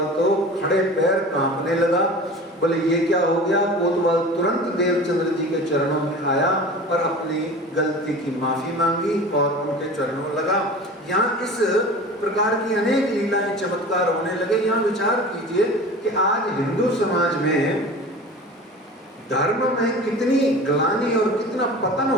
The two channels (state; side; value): normal; both; correlation 0.37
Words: तो खड़े पैर कांपने लगा, बोले ये क्या हो गया? कोतवाल तुरंत देवचंद्र जी के चरणों में आया और अपनी गलती की माफी मांगी और उनके चरणों में लगा। यहाँ इस प्रकार की अनेक लीलाएं चमत्कार होने लगे। यहाँ विचार कीजिए कि आज हिंदू समाज में धर्म में कितनी ग्लानि और कितना पतन